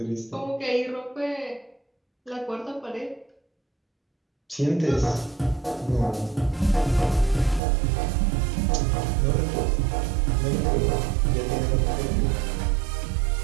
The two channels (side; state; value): left; drops out; at 7.6 s